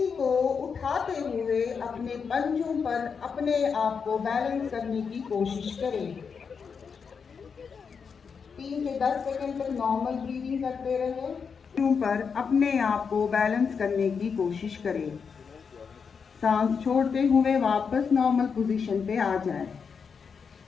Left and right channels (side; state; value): right; quieter; 6.0 dB